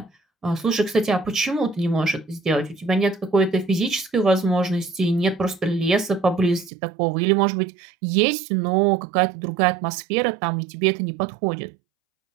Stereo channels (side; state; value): left; drops out; at 6.7 s